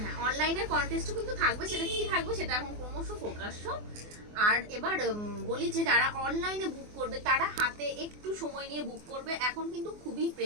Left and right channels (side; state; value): left; late; 24 ms